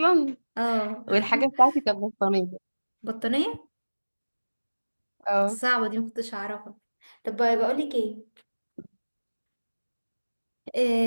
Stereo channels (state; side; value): inverted; both; correlation -1.00